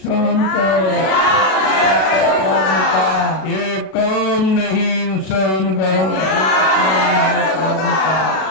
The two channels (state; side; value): late; right; 38 ms